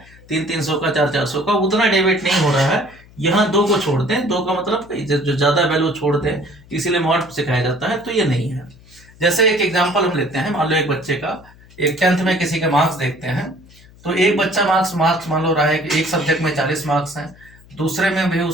300 का, 400 का, उतना डेविएट नहीं हो रहा है। यहाँ 2 को छोड़ते हैं, 2 का मतलब जो ज्यादा वैल्यू छोड़ते हैं, इसीलिए मॉड सिखाया जाता है, तो ये नहीं है। जैसे एक एग्जाम्पल हम लेते हैं, मान लो एक बच्चे का, एक 10th में किसी के मार्क्स देखते हैं, तो एक बच्चा मार्क्स मान लो रहा है कि एक सब्जेक्ट में 40 मार्क्स हैं, दूसरे में भी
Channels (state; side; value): noise; left; hum, 24 dB below the sound